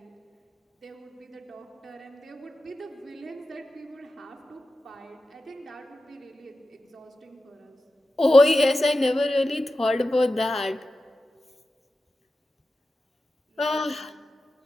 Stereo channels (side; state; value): both; normal; correlation 0.93